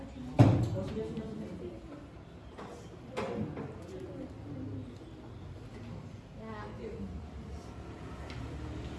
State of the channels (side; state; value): both; identical; correlation 1.00